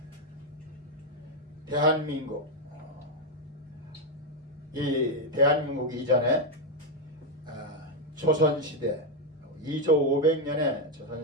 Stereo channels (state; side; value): normal; both; correlation 0.03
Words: 대한민국, 이 대한민국 이전에 조선시대 2조 500년의